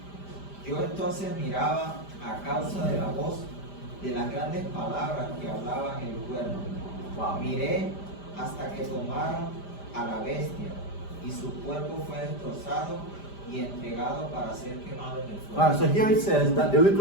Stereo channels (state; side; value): late; right; 5.0 ms